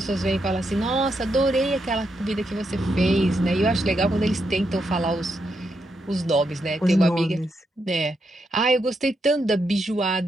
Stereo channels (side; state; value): both; normal; correlation 0.82